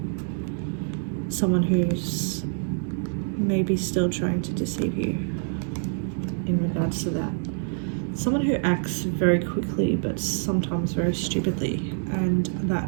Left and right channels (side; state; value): left; silent; 61 dB below the other